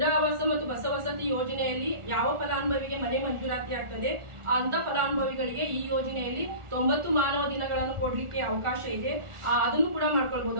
ಆವಾಸ ಮತ್ತು ಬಸವಸತಿ ಯೋಜನೆಯಲ್ಲಿ ಯಾವ ಫಲಾನುಭವಿಗೆ ಮನೆ ಮಂಜೂರಾತಿ ಆಗ್ತದೆ ಅಂತ ಫಲಾನುಭವಿಗಳಿಗೆ ಈ ಯೋಜನೆಯಲ್ಲಿ 90 ಮಾನವ ದಿನಗಳನ್ನು ಕೊಡ್ಲಿಕ್ಕೆ ಅವಕಾಶ ಇದೆ. ಅದನ್ನು ಕೂಡ ಮಾಡ್ಕೊಳ್ಬಹುದು.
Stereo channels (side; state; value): left; late; 1.4 ms